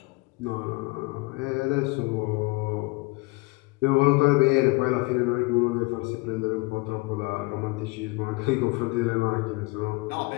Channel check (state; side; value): quieter; right; 25.3 dB